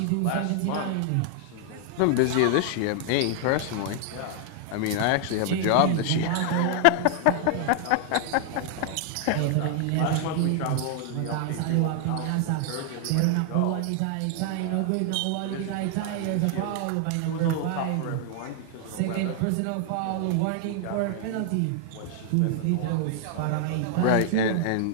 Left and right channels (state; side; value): different; both; correlation 0.00